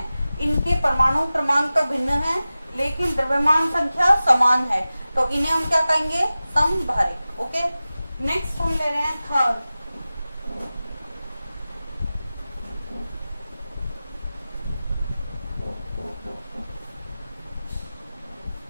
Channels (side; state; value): both; inverted; correlation -0.96